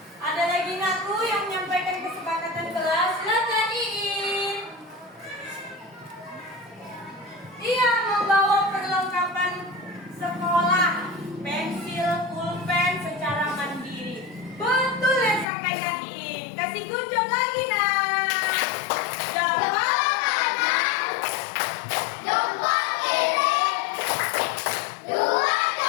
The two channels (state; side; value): drops out; right; at 15.5 s